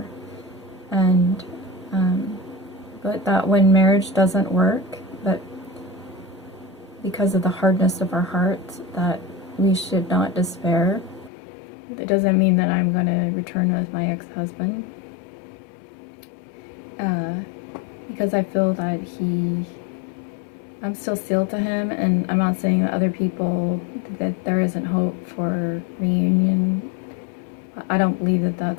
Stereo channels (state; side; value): drops out; right; at 11.3 s